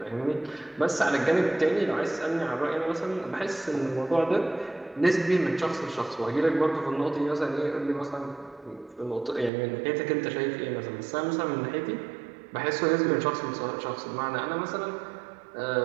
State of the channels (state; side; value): drops out; left; at 9.5 s